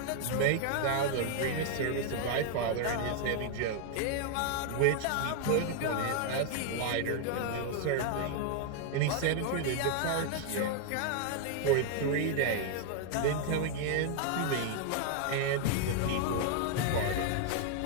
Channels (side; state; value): both; different; correlation 0.00